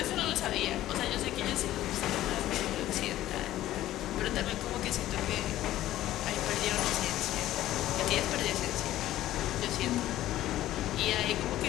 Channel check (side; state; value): right; quieter; 14.2 dB